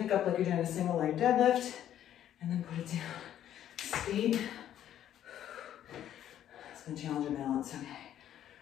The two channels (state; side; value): quieter; right; 11.1 dB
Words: up like you're doing a single leg deadlift, and then put it down, skate. It's gonna challenge your balance, okay.